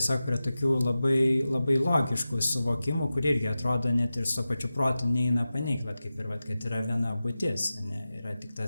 prie tokių labai, labai logiškų suvokimų, kur irgi atrodo net ir su pačiu protu neina paneigti, va kaip ir va, kad yra viena būtis, ne, yra tik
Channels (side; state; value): both; inverted; correlation -0.94